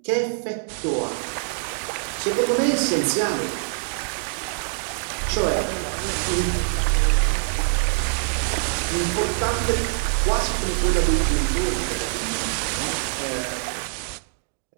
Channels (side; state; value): left; silent; digital silence